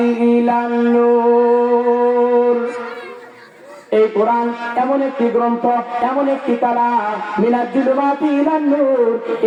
ইলান নূর। এই কোরআন এমন একটি গ্রন্থ, এমন একটি কালাম, মিনাল জুলুমাতি ইলান নূর।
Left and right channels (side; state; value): both; identical; correlation 1.00